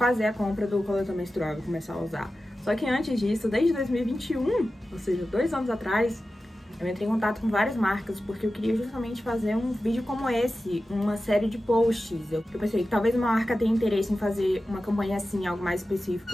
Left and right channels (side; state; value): both; normal; correlation 0.94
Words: a compra do coletor menstrual e começar a usar. Só que antes disso, desde 2021, ou seja, 2 anos atrás, eu entrei em contato com várias marcas porque eu queria justamente fazer um vídeo como esse, uma série de posts. Eu pensei que talvez uma marca tenha interesse em fazer uma campanha assim, algo mais